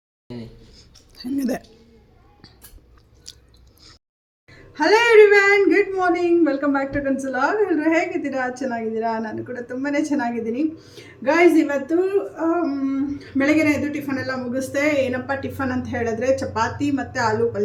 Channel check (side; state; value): both; identical; correlation 1.00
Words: ಹೆಂಗಿದೆ? Hello everyone, good morning, welcome back to ಕನ್ಸುಲಾಗ್. ಎಲ್ಲರೂ ಹೇಗಿದ್ದೀರಾ? ಚೆನ್ನಾಗಿದ್ದೀರಾ? ನಾನು ಕೂಡ ತುಂಬಾ ಚೆನ್ನಾಗಿದ್ದೀನಿ ಗಾಯ್ಸ್. ಇವತ್ತು ಬೆಳಗ್ಗೆ ಎದ್ದು ಟಿಫನ್ ಎಲ್ಲ ಮುಗಿಸ್ದೆ. ಏನಪ್ಪ ಟಿಫನ್ ಅಂತ ಹೇಳಿದ್ರೆ ಚಪಾತಿ ಮತ್ತು ಆಲೂ